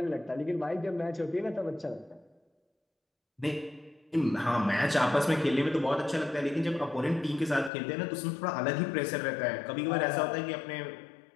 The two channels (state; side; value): drops out; right; at 7.7 s